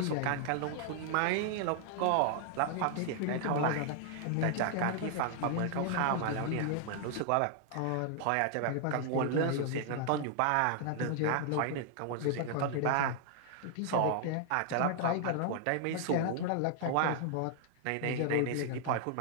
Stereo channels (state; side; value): different; both; correlation 0.00